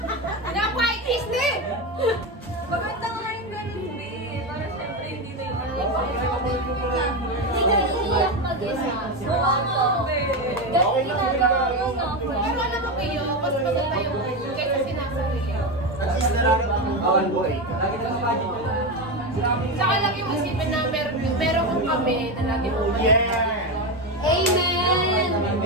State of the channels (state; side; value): normal; both; correlation 0.14